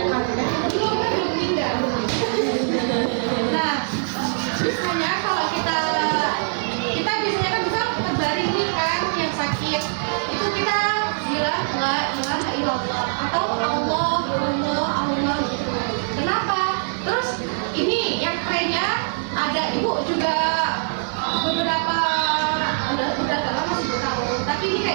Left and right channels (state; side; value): silent; left; 56 dB below the other